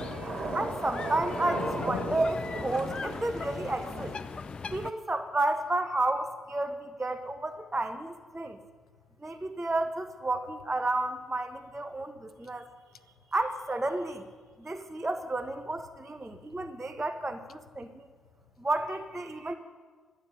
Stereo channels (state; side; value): normal; both; correlation 0.88